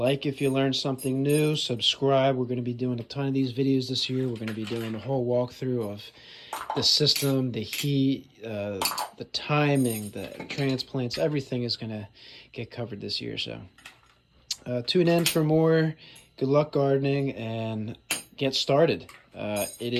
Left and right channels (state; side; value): identical; both; correlation 1.00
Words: if you learned something new, subscribe. We're going to be doing a ton of these videos this year. We're going to be doing a whole walkthrough of the system, the heat, the timing, the transplants. Everything is going to get covered this year. So tune in for more. Good luck gardening, and get started. It